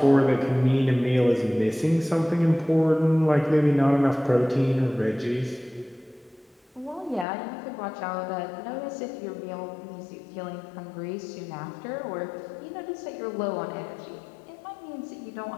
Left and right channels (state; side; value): drops out; right; at 7.2 s